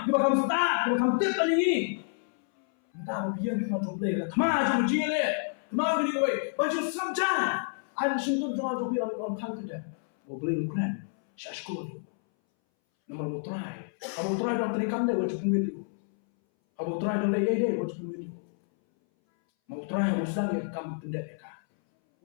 bakam start bakam tip kan ini entah biar cuma jomble ka thama jom jile kemau bini kowe bantu sabjan Ada sentuh jangan jogi on kada. Mau beli makanan, saya sekolah. Nama mau try. Abang try dalam terikan dia wajib video. Abang try dalam dia wajib video. Mau try mau sedang dia kamu pendat dia kan.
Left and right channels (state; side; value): silent; right; 59 dB below the other